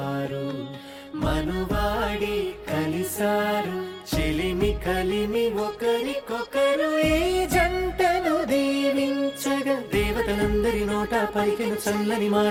మనువాడి కలిసారు చెలిమి కలిమి ఒకరికొకరు ఈ జంటను దీవించగా దేవతలందరి నోట పలికిన చల్లని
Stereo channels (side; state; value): both; identical; correlation 1.00